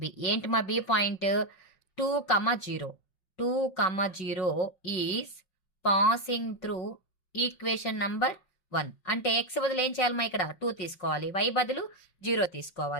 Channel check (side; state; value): right; late; 5.5 ms